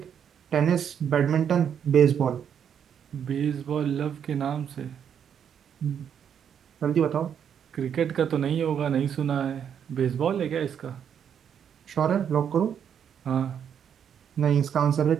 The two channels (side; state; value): left; quieter; 8.3 dB